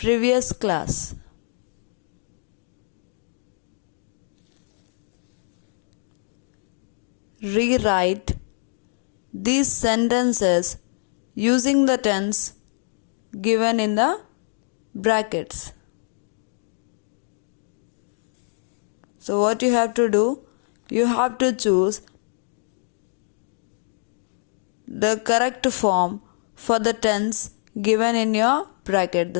class. Rewrite these sentences using the tense given in the brackets. So what you have to do, you have to choose the correct form for the tense given in your bracket.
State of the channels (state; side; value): silent; right; digital silence